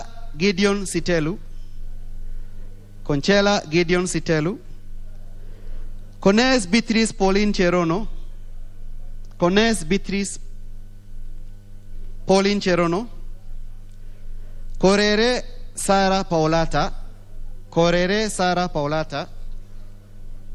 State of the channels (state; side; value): identical; both; correlation 1.00